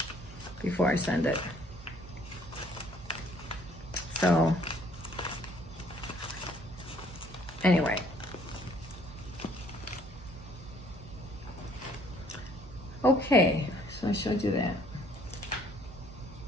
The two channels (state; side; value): noise; right; hum, 17 dB below the sound